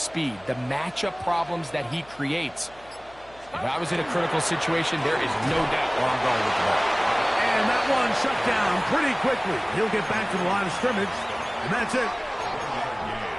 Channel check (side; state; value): left; noise; hum, 26 dB below the sound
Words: the matchup problems that he creates. If I was in a critical situation, there is no doubt where I'm going with the ball. And that one shut down pretty quickly. He'll get back to the line of scrimmage, and that's it.